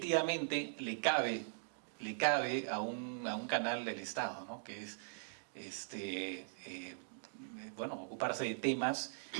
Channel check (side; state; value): left; silent; digital silence